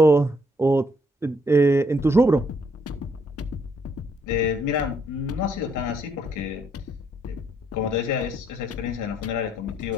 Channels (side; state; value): both; normal; correlation 0.70